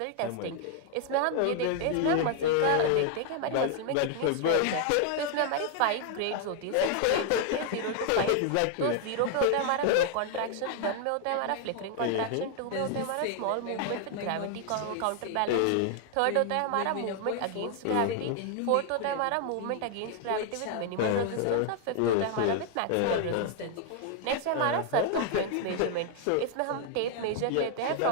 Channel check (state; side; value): different; both; correlation 0.00